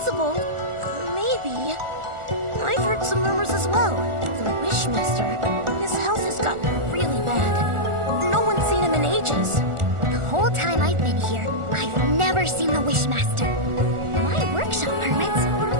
Maybe. I've heard some rumors as well. The Wishmaster, his health has gotten really bad. No one's seen him in ages. The whole time I've been here, I've never seen the Wishmaster. My workshop permits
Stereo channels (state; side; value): late; left; 1.4 ms